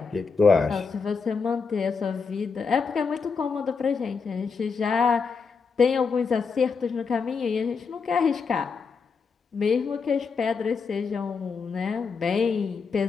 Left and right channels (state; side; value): quieter; right; 5.3 dB